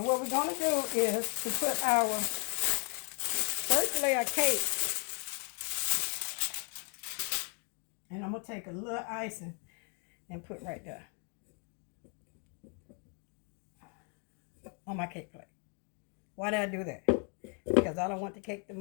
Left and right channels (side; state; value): right; quieter; 38.8 dB